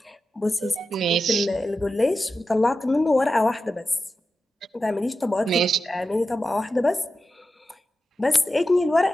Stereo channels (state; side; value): normal; both; correlation 0.91